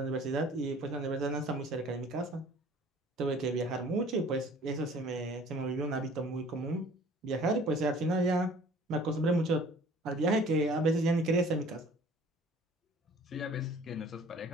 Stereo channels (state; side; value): normal; both; correlation 0.51